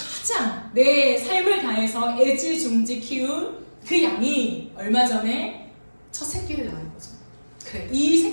내 삶을 다해서 애지중지 키운 그 양이 얼마 전에 첫 새끼를 낳은 거죠. 그래, 이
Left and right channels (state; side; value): inverted; both; correlation -1.00